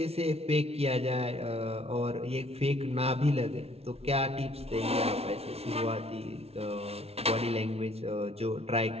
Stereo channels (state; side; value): late; left; 0.30 ms